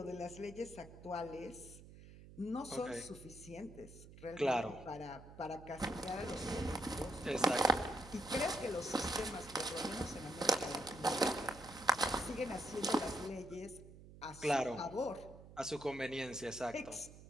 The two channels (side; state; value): right; noise; hum, 17 dB below the sound